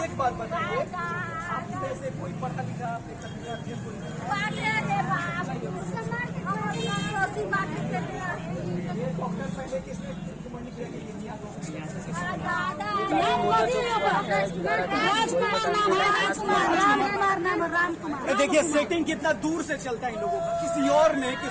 एक बात बताइए, आप में से कोई पढ़ा लिखा डॉक्टर पहले किसने देखिए सेटिंग कितना दूर से चलता है इन लोगों का। किसी और ने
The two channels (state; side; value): identical; both; correlation 1.00